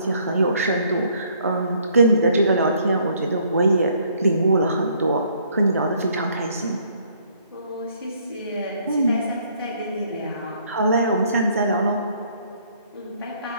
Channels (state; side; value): inverted; both; correlation -0.64